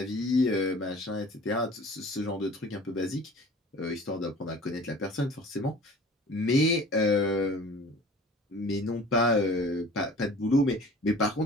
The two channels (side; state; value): both; normal; correlation 0.45